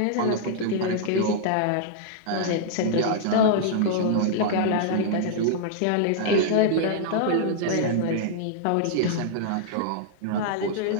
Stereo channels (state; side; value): different; both; correlation -0.01